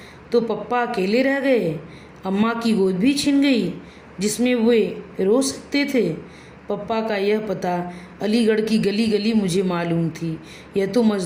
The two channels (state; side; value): identical; both; correlation 1.00